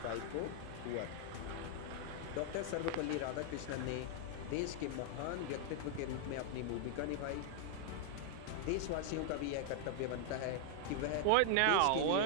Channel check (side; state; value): both; different; correlation 0.00